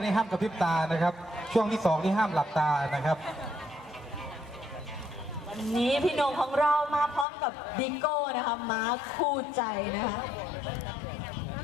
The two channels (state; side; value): drops out; right; at 7.2 s